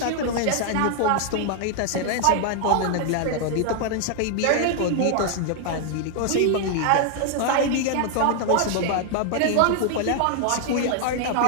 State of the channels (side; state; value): both; different; correlation 0.00